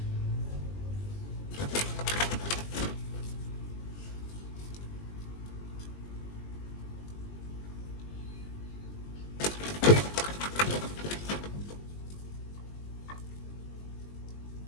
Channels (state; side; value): late; right; 20 ms